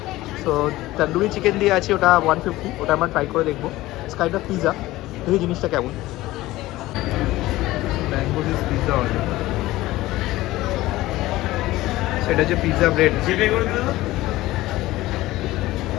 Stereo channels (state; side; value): quieter; right; 17.4 dB